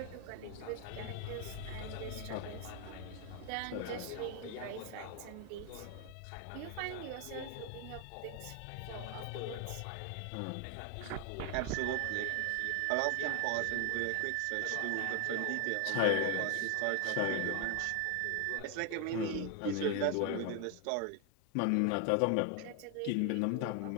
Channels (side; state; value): both; different; correlation 0.01